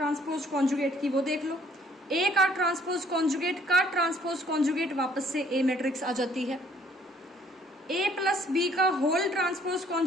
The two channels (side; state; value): both; normal; correlation 0.61